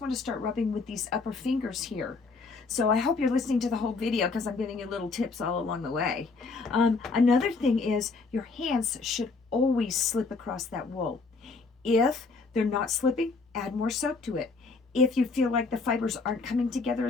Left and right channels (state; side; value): quieter; right; 4.1 dB